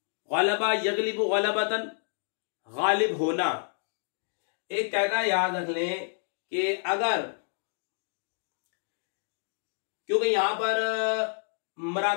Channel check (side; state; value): right; silent; digital silence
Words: गलबा यगलिबु गलबतन, गालिब होना। एक कायदा याद रख लें कि अगर, क्योंकि यहां पर